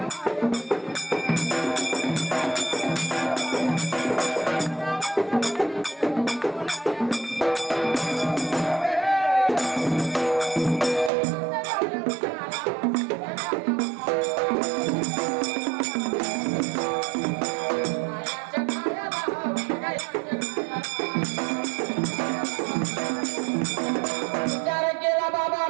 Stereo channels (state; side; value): drops out; left; at 11.1 s